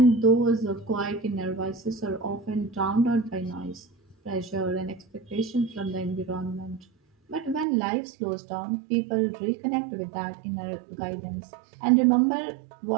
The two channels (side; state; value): left; drops out; at 7.7 s